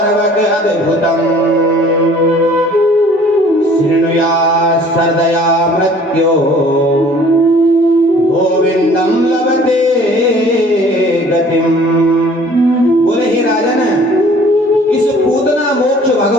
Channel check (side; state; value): both; normal; correlation 0.52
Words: अद्भुतम शृणुया सर्दया मृत्यो गोविंदम लभते गतिम। बोले हे राजन, इस पूतना मोक्ष